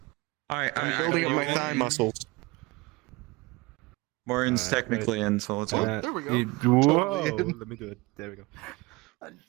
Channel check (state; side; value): quieter; left; 23.6 dB